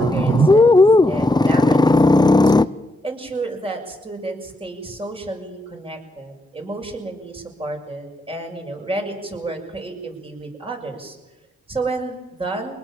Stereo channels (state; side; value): normal; both; correlation 0.80